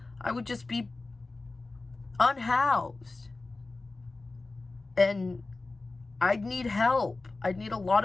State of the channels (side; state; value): right; quieter; 3.4 dB